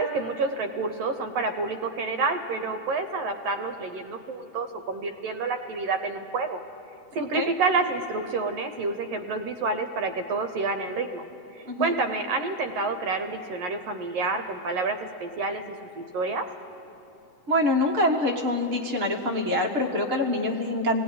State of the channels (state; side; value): late; left; 7.8 ms